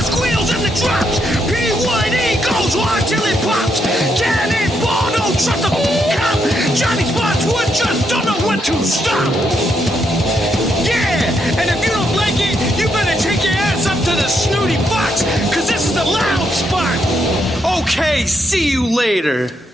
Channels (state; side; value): normal; both; correlation 0.78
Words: squeals and the drops! P1E goes hard till it pops! Cannonball, don't trust a cop! Johnny Spotswood just don't know when to stop! Yeah! And if you don't like it, you better take your ass up to the snooty box, cause this is the Loud Spot! Okay, see you later.